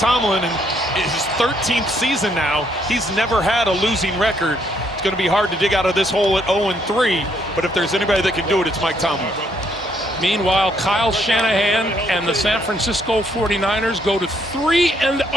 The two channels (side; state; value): both; normal; correlation 0.70